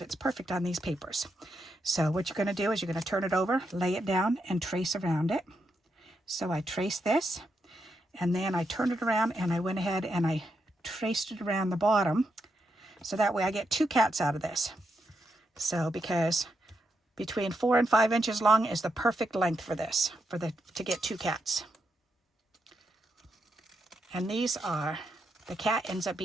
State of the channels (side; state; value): both; normal; correlation 0.83